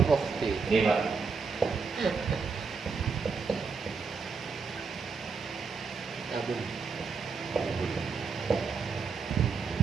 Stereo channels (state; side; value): quieter; left; 5.0 dB